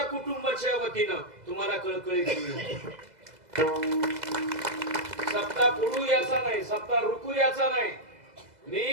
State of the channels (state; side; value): late; left; 2.0 ms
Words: कुटुंबाच्या वतीनं तुम्हाला कळकळीची विनंती. सप्ताह पुढू याचा नाही, सप्ताह रुकू याचा नाही.